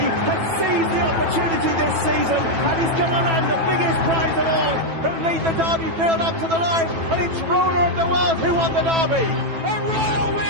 has seized the opportunity this season and he's going to land the biggest prize of all. He'll lead the Derby field up to the line, and it's Ruler of the World who won the Derby. A royal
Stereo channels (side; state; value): left; late; 9.1 ms